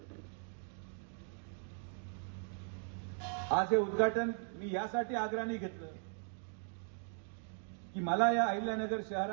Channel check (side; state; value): left; silent; 52 dB below the other